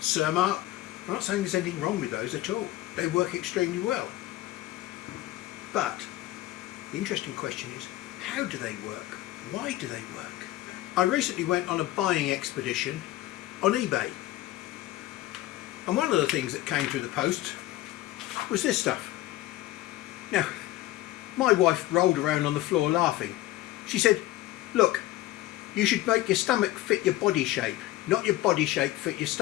I'm not saying there's anything wrong with those at all. They work extremely well. But the interesting question is, how do they work? Why do they work? I recently went on a buying expedition on eBay, and one of the things that came through the post was this stuff. Now, my wife rolled around on the floor laughing. She said, "Look, you should make your stomach fit your body shape, not your body shape fit your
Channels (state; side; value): quieter; right; 15.9 dB